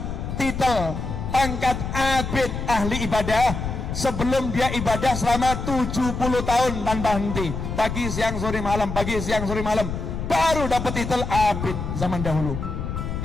titel pangkat abid ahli ibadah sebelum dia ibadah selama 70 tahun tanpa henti, pagi siang sore malam, pagi siang sore malam, baru dapat titel abid zaman dahulu.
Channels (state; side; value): noise; left; rumble, 5 dB below the sound